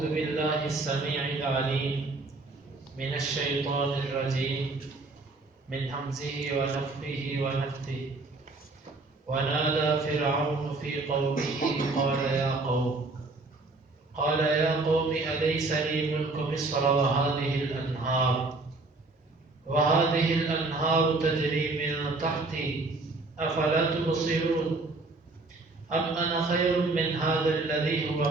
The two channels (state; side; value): quieter; left; 3.3 dB